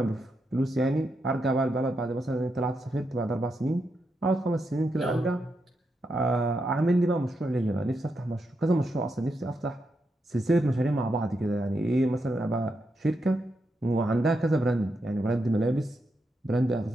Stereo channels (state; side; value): normal; both; correlation 0.84